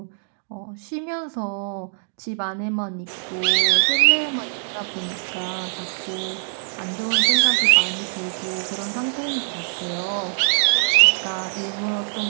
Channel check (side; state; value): left; silent; digital silence